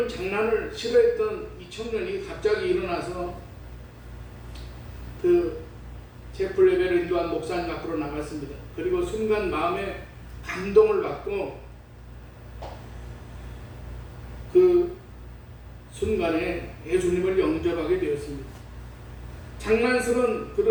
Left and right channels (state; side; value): identical; both; correlation 1.00